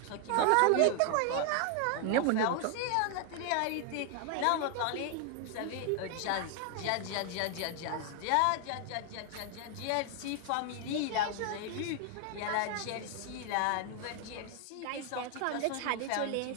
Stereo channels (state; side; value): different; both; correlation 0.00